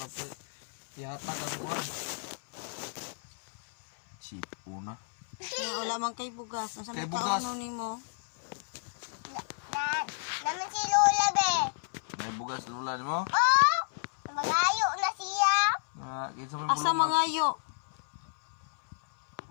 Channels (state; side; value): silent; right; 57 dB below the other